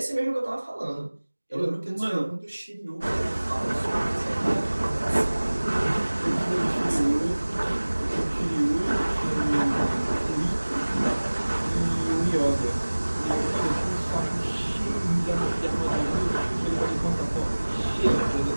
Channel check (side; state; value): both; inverted; correlation -1.00